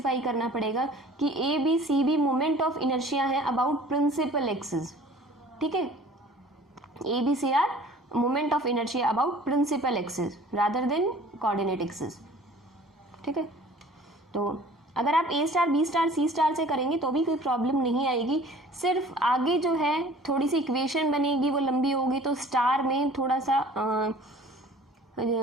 करना पड़ेगा कि ABC भी मोमेंट ऑफ इनर्शिया है अबाउट प्रिंसिपल एक्सिस। ठीक है, ABC are moment of inertia about principal axis rather than coordinate axis. ठीक है, तो अगर आप A star, B star, C star से करेंगे तो भी कोई प्रॉब्लम नहीं आएगी, सिर्फ आगे जो है थोड़ी सी इक्वेशन बनेगी वो लंबी होगी, तो स्टार में थोड़ा सा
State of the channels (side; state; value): both; normal; correlation 0.48